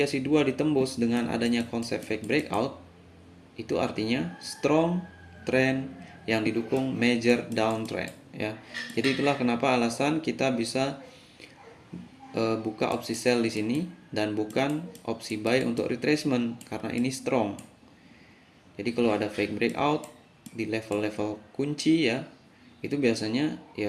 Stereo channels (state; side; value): identical; both; correlation 1.00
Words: 2 ditembus dengan adanya konsep fake breakout, itu artinya strong trend yang didukung major downtrend ya. Jadi itulah kenapa alasan kita bisa buka opsi sell di sini dan bukan opsi buy untuk retracement karena ini strong. Jadi kalau ada fake breakout di level-level kunci ya, itu biasanya ya